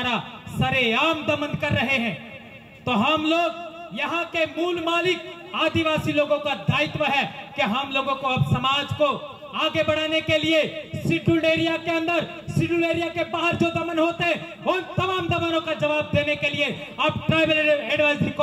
सरेआम दमन कर रहे हैं। तो हम लोग यहाँ के मूल मालिक आदिवासी लोगों का दायित्व है कि हम लोगों को अब समाज को आगे बढ़ाने के लिए शेड्यूल्ड एरिया के अंदर, शेड्यूल्ड एरिया के बाहर जो दमन होते हैं उन तमाम दमनों का जवाब देने के लिए अब ट्राइबल एडवाइजरी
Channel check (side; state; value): both; identical; correlation 1.00